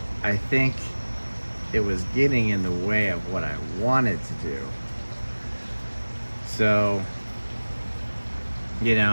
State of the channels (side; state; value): both; inverted; correlation -1.00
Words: I think it was getting in the way of what I wanted to do. So, you know,